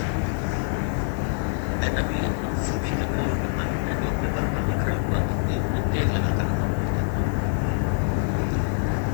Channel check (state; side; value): silent; right; 62 dB below the other